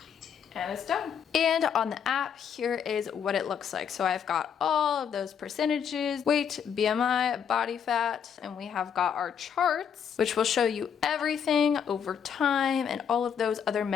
And it's done. And on the app, here is what it looks like. So I've got all of those percentages, weight, BMI, body fat, and we have got our charts, which will show you everything over time and all of those other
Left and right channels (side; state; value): right; quieter; 7.7 dB